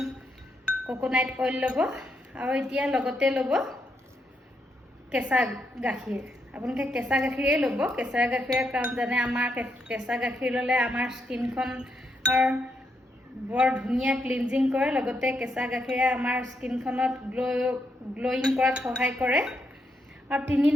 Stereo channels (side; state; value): both; normal; correlation 0.80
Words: কোকোনাট অইল ল'ব। আৰু এতিয়া লগতে ল'ব কেঁচা গাখীৰ। আপোনালোকে কেঁচা গাখীৰেই ল'ব। কেঁচা গাখীৰৰ কাৰণ জানে আমাৰ কেঁচা গাখীৰ ল'লে আমাৰ স্কিনখনৰ বৰ ধুনীয়া ক্লিনজিং কৰে, লগতে কেঁচা গাখীৰে আমাৰ স্কিনখনত গ্ল'য়িং কৰাত সহায় কৰে। আৰু 3